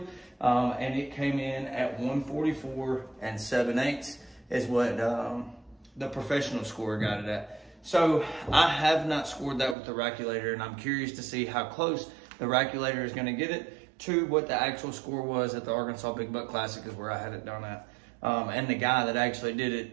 And it came in at 144 7/8 is what the professional scorer got it at. So I have not scored that with the Rackulator, and I'm curious to see how close the Rackulator is gonna get it to what the actual score was at the Arkansas Big Buck Classic, is where I had it done at. And the guy that actually did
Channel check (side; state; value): left; drops out; at 9.8 s